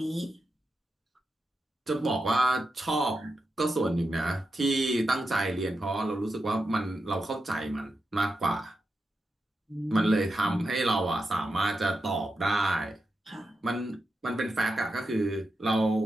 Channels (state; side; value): normal; both; correlation 0.88